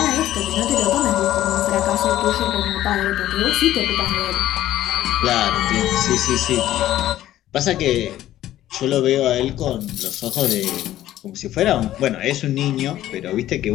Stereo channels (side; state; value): right; quieter; 13.5 dB